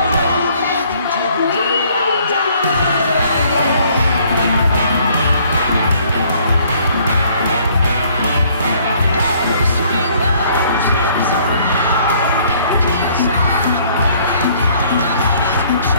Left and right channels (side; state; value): both; inverted; correlation -0.61